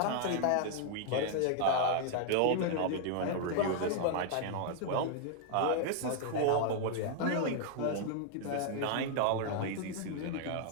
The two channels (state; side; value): different; both; correlation 0.00